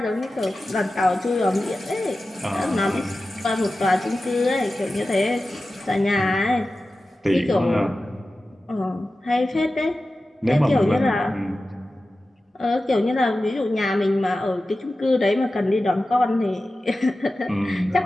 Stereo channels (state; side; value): normal; both; correlation 0.94